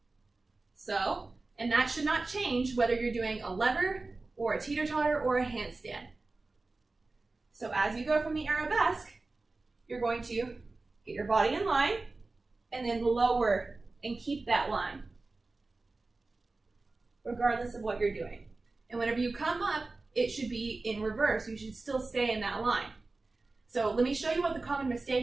So, and that should not change whether you're doing a lever or a teeter-totter or a handstand. So as you go from the arabesque, you're going to get your body in line and then lower and keep that line, regardless of what you're doing. And whenever you come up, it should be in reverse. You should still stay in that line. So let me show you what the common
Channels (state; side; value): quieter; left; 3.5 dB